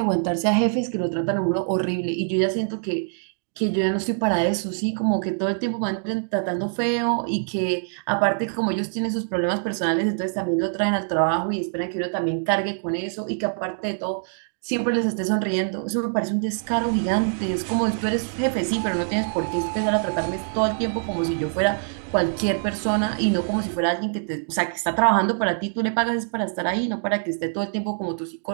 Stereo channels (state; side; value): silent; left; digital silence